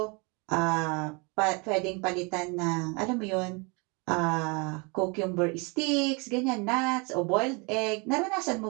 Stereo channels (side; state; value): left; quieter; 30.6 dB